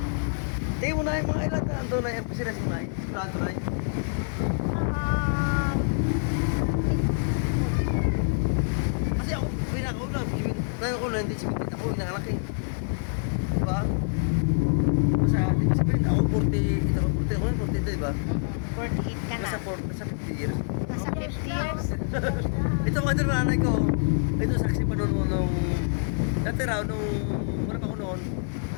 tingin mo na yung mga ilan na ando na yung pasiras yung nay. Eskwela ito nay. Kasi ako, pinakauna, tayo ko na hindi sipitin ako, inanganak eh. Diba? Basta, di ba sabihin, ako 40, ito, 40 ako, 42, diba? 48 ka na. Nasa 50 years. Nasa 50 years. Ito mga ito nanay ko, ito saksi pa noon nung, dati raw, nung, wala pa ako noon,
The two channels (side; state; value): right; silent; 58 dB below the other